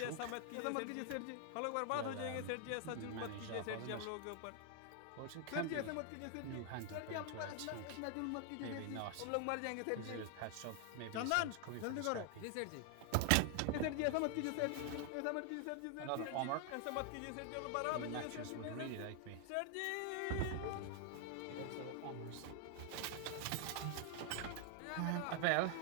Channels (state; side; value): different; both; correlation 0.00